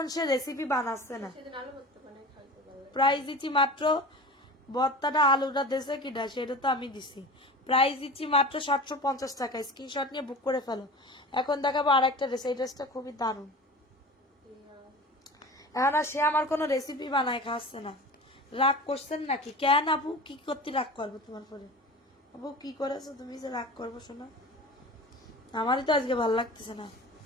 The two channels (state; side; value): normal; both; correlation 0.35